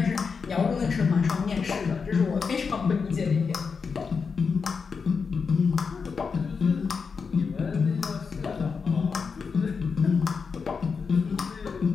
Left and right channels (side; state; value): right; quieter; 5.4 dB